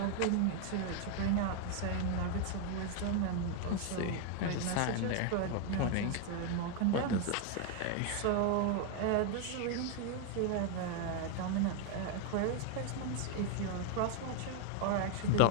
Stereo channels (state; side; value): different; both; correlation 0.01